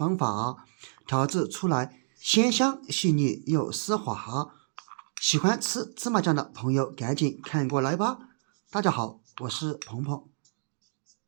法，調製出來鮮香細膩又絲滑。喜歡吃芝麻醬的朋友趕緊看過來吧。大家好，我是鵬鵬。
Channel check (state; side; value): silent; left; digital silence